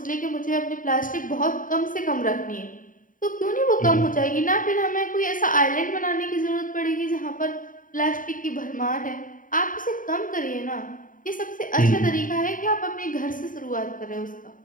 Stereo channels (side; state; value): right; late; 0.39 ms